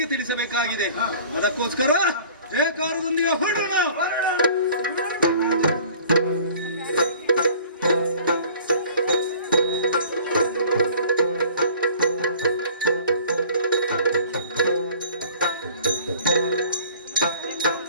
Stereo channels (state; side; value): inverted; both; correlation -0.48